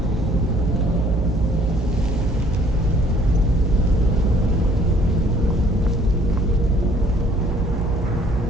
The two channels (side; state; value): both; normal; correlation 0.59